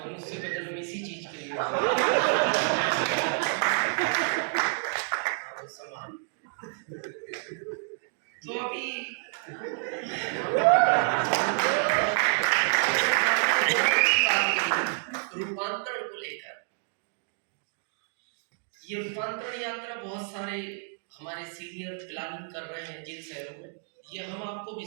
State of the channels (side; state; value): left; silent; 59 dB below the other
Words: का जन्म इसी चीज के लिए समान। तो अभी रूपांतरण को लेकर, ये रूपांतरण यात्रा बहुत सारे हमारे सीनियर प्लानिंग कर रहे हैं जिन शहरों में। ये हम आपको